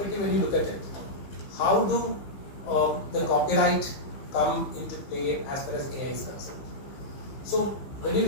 when you look at it, how do the copyright come into play as far as AI is concerned? So, when you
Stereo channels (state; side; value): late; right; 15 ms